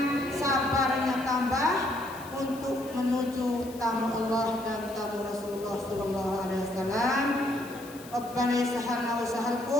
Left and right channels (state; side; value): noise; left; hiss, 19 dB below the sound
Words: sabarnya tambah untuk menuju tamu Allah dan tamu Rasulullah sallallahu alaihi wasallam. Rabbana yassahhalna wa